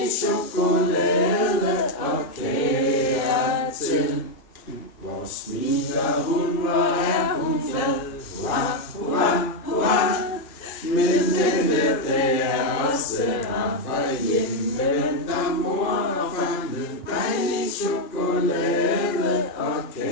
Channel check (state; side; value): late; right; 2.4 ms